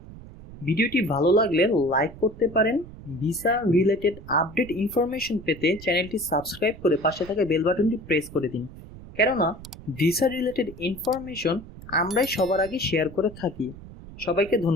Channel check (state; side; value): noise; right; rumble, 16 dB below the sound